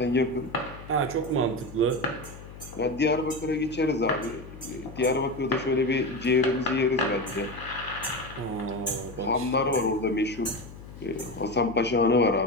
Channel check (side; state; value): left; noise; hum, 15 dB below the sound